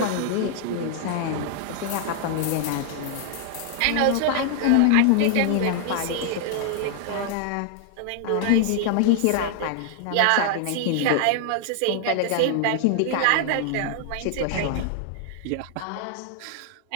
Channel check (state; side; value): different; both; correlation 0.00